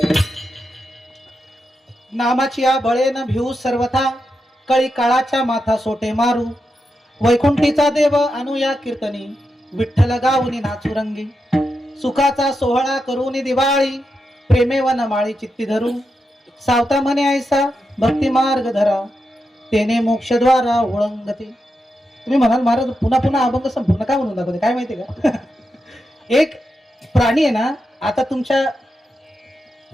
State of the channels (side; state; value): both; normal; correlation 0.87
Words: नामाची या बळेन भिऊ सर्वथा कळी काळाच्या माथा सोटे मारू वैकुंठीचा देव अनुया कीर्तनी विठ्ठल गाऊनी नाचुरंगी सुखाचा सोहळा करूनी दिवाळी प्रेमे वन माळी चित्ती धरू सावता म्हणे ऐसा भक्ती मार्ग धरा तेने मोक्षद्वारा ओळंगते. तुम्ही म्हणाल महाराज पुन्हा पुन्हा अभंग संपूर्ण काय म्हणून दाखवते काय माहिती का एक प्राणी आहे ना आता तुमच्या